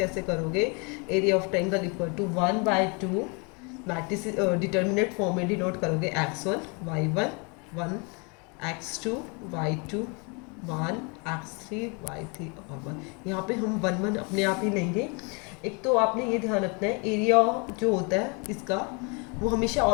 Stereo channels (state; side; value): quieter; right; 32.8 dB